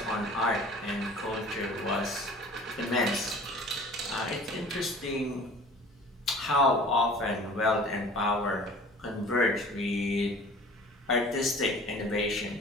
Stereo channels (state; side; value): normal; both; correlation 0.45